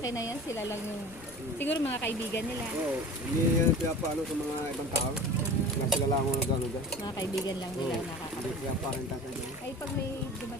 na yan, sila lang yung... Siguro mga kaibigan nila. Oo, hindi yan pinapaano sa mga ibang tao. Sila lang ako nag-ano dyan. Mga kaibigan lang nila Hindi nakakaroon. pinaparenta sa inyo. Ay, pag may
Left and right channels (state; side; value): noise; left; rumble, 20 dB below the sound